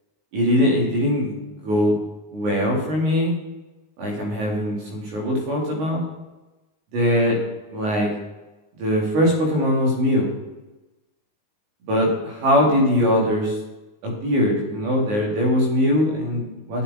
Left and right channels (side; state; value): left; late; 19 ms